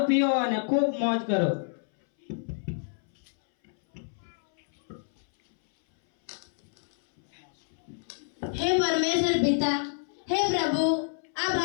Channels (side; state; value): right; silent; 59 dB below the other